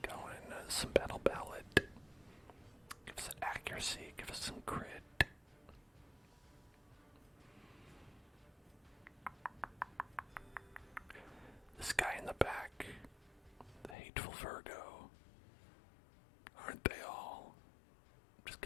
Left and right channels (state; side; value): drops out; right; at 14.0 s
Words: going. Some battle ballad. Give us accuracy. Give us some crit. This guy in the back, the hateful Virgo. Aren't they all? I'm just